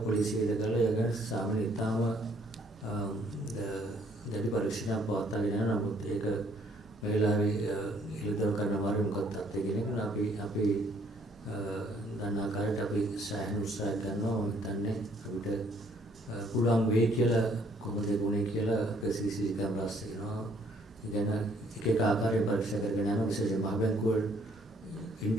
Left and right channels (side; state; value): both; normal; correlation 0.64